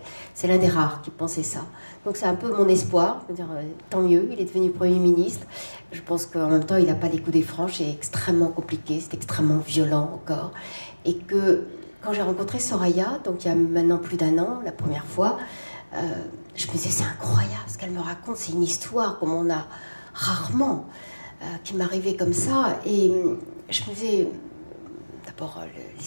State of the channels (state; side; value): inverted; both; correlation -1.00